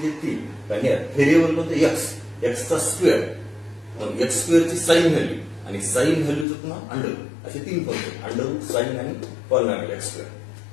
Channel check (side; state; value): right; drops out; at 6.5 s